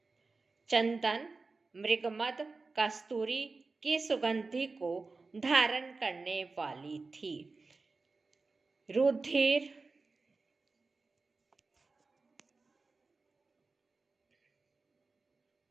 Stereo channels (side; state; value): left; quieter; 3.9 dB